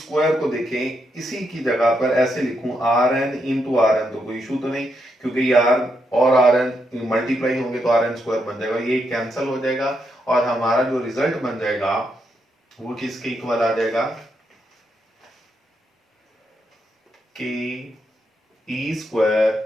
स्क्वायर को देखें इसी की जगह पर ऐसे लिखूं R N into R N, तो कोई इशू तो नहीं, क्योंकि आर और आर एन मल्टीप्लाई होंगे तो आर एन स्क्वायर बन जाएगा, ये कैंसिल हो जाएगा और हमारा जो रिजल्ट बन जाएगा वो किसके इक्वल आ जाएगा, K E square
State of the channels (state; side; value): normal; both; correlation 0.80